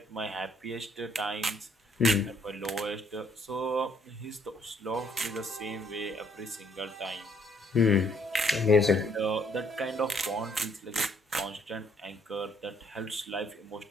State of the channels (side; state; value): both; normal; correlation 0.67